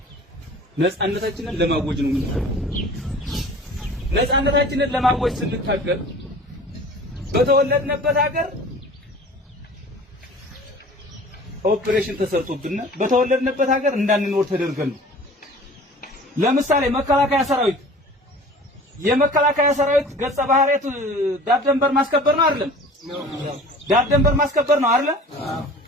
ነፃነታችንን ለማወጅ ነው። ነፃነታችንን ለማወጅ ስንታገል በተወለድንበት ሀገር ኦፕሬሽን ተሰርቶብን በተወለድንበት ሀገር እንዳንኖር ተደርገን ነው። ለምሳሌ መከላከያ ሰራዊት የመከላከያ ሰራዊት ገጸ ባህሪያቱ ዳር ድንበር ማስከበር ነው አይደለም? ዳር ድንበር ማስከበር ነው አይደል?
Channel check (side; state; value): both; normal; correlation 0.44